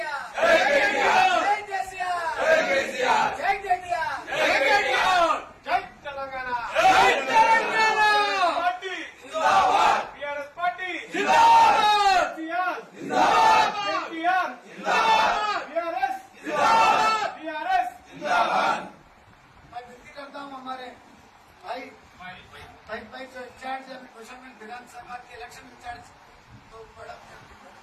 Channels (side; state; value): both; identical; correlation 1.00